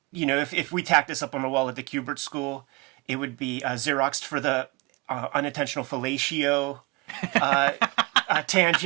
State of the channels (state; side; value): quieter; left; 25.6 dB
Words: if we tacked this up on the wall at the Kubert School, it would be Xeroxed for the unintentional fellatio